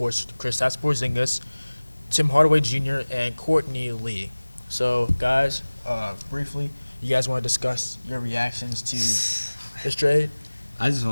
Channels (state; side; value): inverted; both; correlation -1.00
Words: Kristaps Porzingis, Tim Hardaway Jr., and Courtney Lee. So, guys, briefly, you guys want to discuss your reactions to this trade? I just